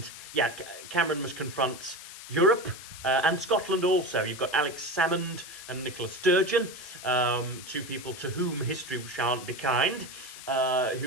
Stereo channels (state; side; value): noise; left; hiss, 13 dB below the sound